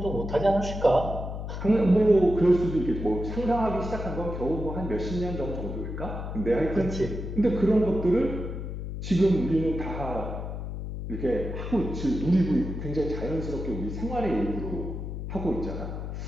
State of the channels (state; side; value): noise; left; hum, 6 dB below the sound